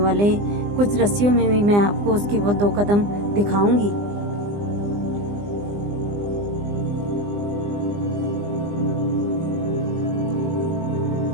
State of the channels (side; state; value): left; late; 20 ms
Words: कुछ रस्सियों में भी मैं आपको उसके वो 2 कदम दिखाऊंगी।